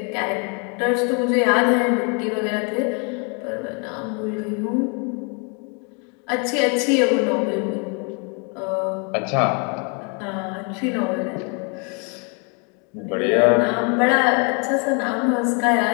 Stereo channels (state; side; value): quieter; right; 36.0 dB